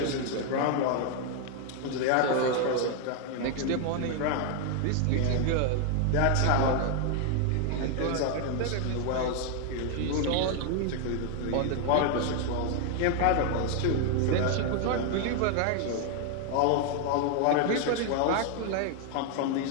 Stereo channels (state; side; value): different; both; correlation 0.01